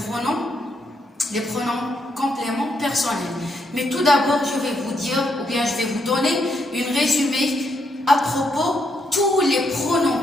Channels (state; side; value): normal; both; correlation 0.77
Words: pronoms compléments personnels. Mais tout d'abord, je vais vous dire, ou bien je vais vous donner une résumé à propos tous les